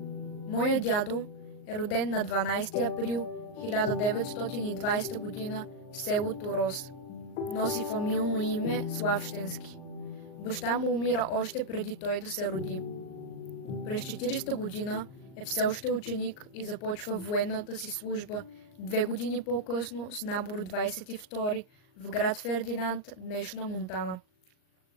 Моя дядо е роден на 12 април 1920 година в село Торос. Носи фамилно име Славщенски. Баща му умира още преди той да се роди. През 40-та година е все още ученик и започва военната си служба 2 години по-късно с набор 22 в град Фердинанд, днешна Монтана.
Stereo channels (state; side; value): late; right; 38 ms